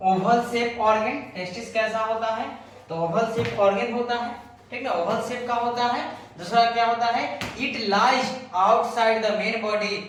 oval shape organ. Testis कैसा होता है, तो ओवल शेप ऑर्गन होता है, ठीक ना, ओवल शेप का होता है। दूसरा क्या होता है, it lies outside the main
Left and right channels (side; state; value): both; identical; correlation 1.00